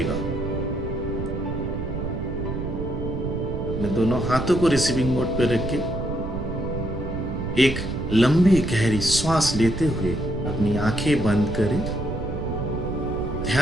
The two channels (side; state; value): right; noise; rumble, 4 dB below the sound